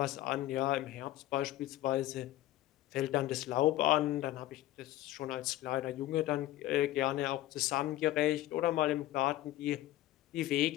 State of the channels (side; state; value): right; quieter; 15.2 dB